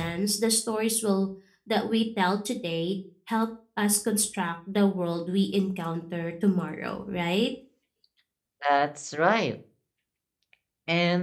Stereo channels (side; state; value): both; identical; correlation 1.00